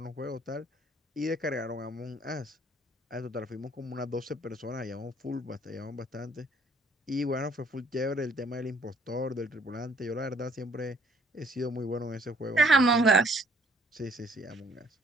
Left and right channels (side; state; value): both; normal; correlation 0.62